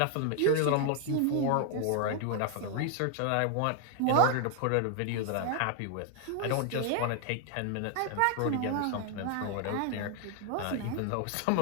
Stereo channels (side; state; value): both; different; correlation 0.00